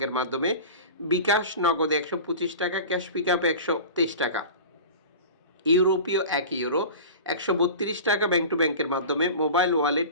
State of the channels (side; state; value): both; inverted; correlation -0.34